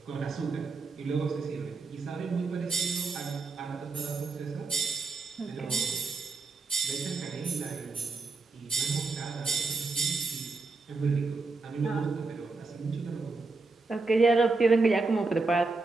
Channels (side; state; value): left; quieter; 3.8 dB